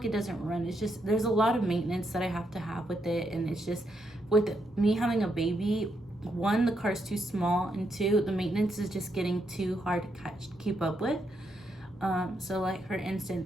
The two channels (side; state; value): both; normal; correlation 0.79